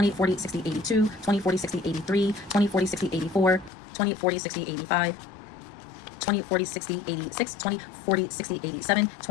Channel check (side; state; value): right; drops out; at 3.7 s